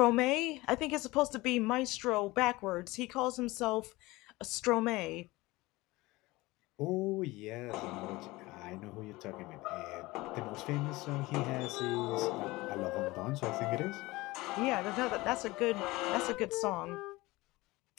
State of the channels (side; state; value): right; quieter; 20.8 dB